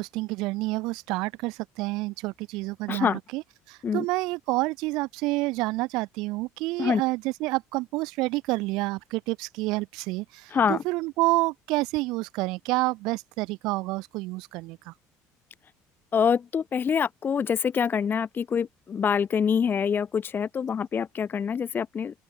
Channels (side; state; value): both; normal; correlation 0.44